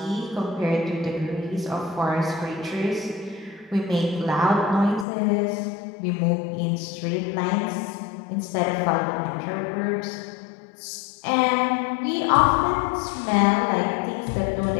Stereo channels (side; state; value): right; drops out; at 5.1 s